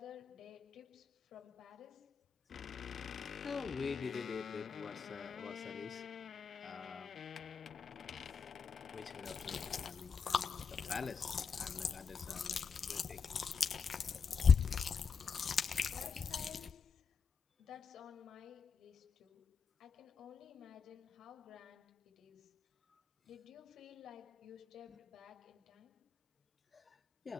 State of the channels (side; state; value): right; quieter; 5.8 dB